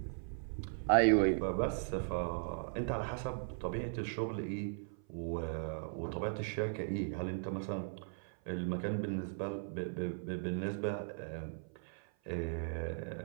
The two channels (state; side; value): silent; left; 52 dB below the other